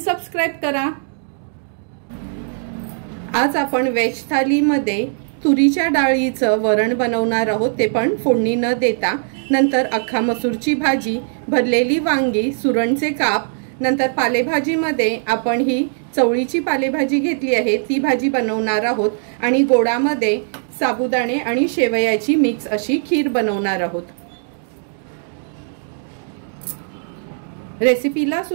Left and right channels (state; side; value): silent; left; digital silence